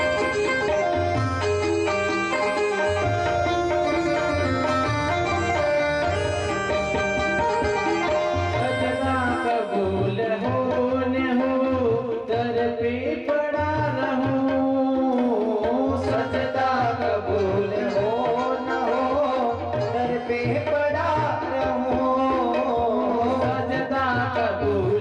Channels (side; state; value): both; identical; correlation 1.00